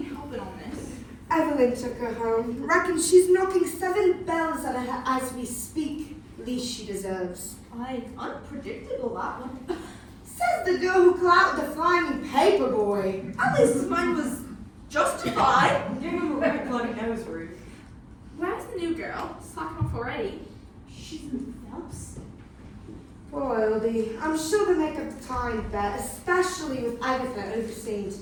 helping on this. Evelyn took her home. Reckon she's knocking 7 bells at her as we speak. Least she deserves. Aye, unpredictable, that one. Says the girl who clouted the flying paper boy. At least mine was justified. Give him a right bloody nose, Ruth. Where's the new girl? Slacking off already. She's in Phelps. Poor Oldie. I'm sure they make up the time bet, especially with Agatha overseeing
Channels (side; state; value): both; identical; correlation 1.00